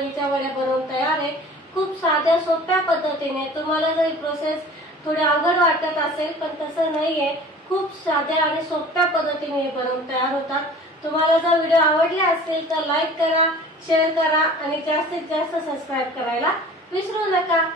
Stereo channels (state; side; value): normal; both; correlation 0.44